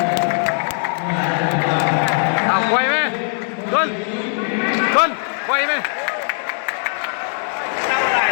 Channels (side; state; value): right; silent; digital silence